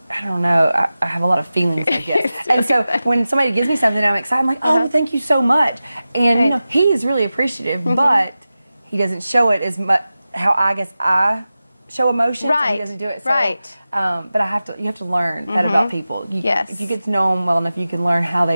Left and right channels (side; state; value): both; inverted; correlation -0.95